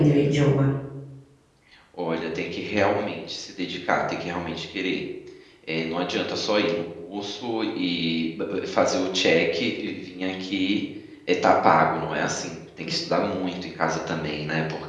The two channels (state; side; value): identical; both; correlation 1.00